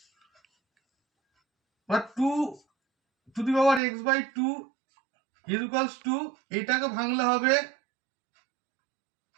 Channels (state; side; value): drops out; left; at 3.8 s